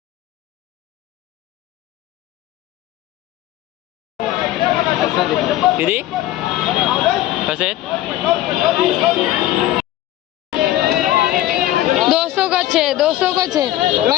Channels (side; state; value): right; quieter; 14.4 dB